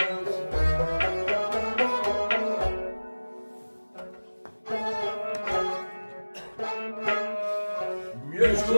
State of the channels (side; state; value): both; inverted; correlation -1.00